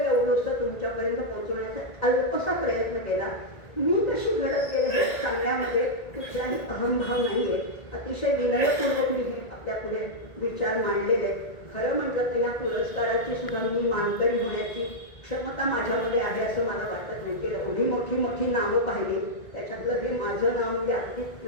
तुमच्यापर्यंत पोहोचवण्याचा अल्पसा प्रयत्न केला. मी कशी घडत गेले हे सांगण्यामध्ये कुठलाही अहंभाव नाही आहे. अतिशय विनयपूर्वक मी हे आपल्या पुढे विचार मांडलेले. खरं म्हटलं तर या पुरस्काराची सुद्धा मी मानकरी होण्याची क्षमता माझ्यामध्ये आहे असं मला वाटत नाही. की एवढी मोठी मोठी नावं पाहिली, त्याच्यातलं हे माझं नाव म्हणजे अगदी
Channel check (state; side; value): late; right; 1.8 ms